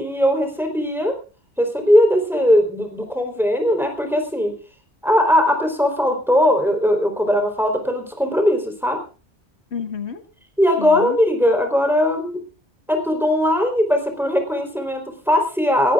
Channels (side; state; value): both; normal; correlation 0.73